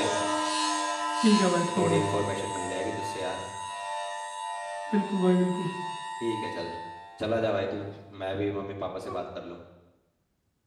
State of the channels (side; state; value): both; identical; correlation 1.00